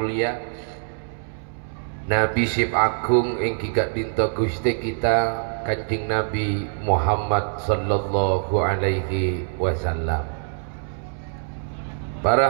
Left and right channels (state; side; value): silent; left; 63 dB below the other